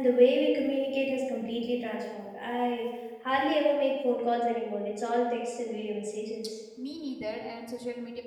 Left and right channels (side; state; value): both; identical; correlation 1.00